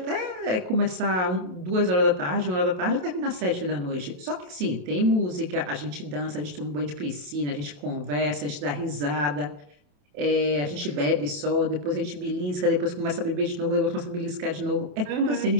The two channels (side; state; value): left; late; 28 ms